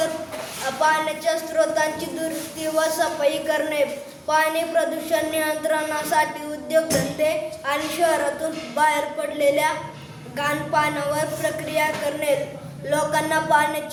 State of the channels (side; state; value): both; identical; correlation 1.00